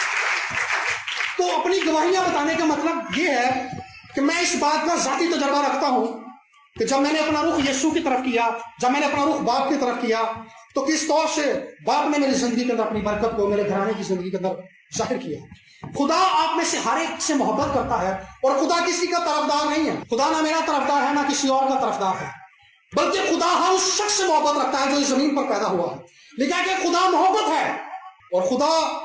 तो अपनी गवाहियां बताने का मतलब ये है कि मैं इस बात का जाती तजर्बा रखता हूं कि जब मैंने अपना रुख यीशु की तरफ किया, जब मैंने अपना रुख बाप की तरफ किया, तो किस तौर से बाप ने मेरी जिंदगी के अंदर अपनी बरकत को मेरे घराने की जिंदगी के अंदर जाहिर किया। खुदा आप में से हर एक से मोहब्बत करता है, और खुदा किसी का तरफदार नहीं है। खुदा ना मेरा तरफदार है ना किसी और का तरफदार है, बल्कि खुदा हर उस शख्स से मोहब्बत रखता है जो इस जमीन पर पैदा हुआ है। लिखा है कि खुदा मोहब्बत है, और खुदा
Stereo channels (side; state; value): both; identical; correlation 1.00